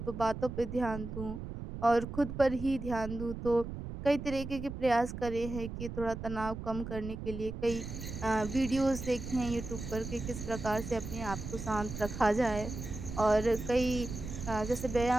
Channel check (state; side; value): noise; right; rumble, 8 dB below the sound